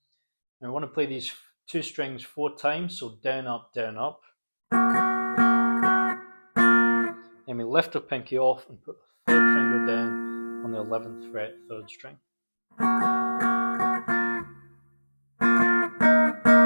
And we want to play these two strings 4 times, so down, up, down, up. Then we lift our pinky off and put the 3rd finger down on the 11th fret 3rd string.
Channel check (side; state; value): both; inverted; correlation -1.00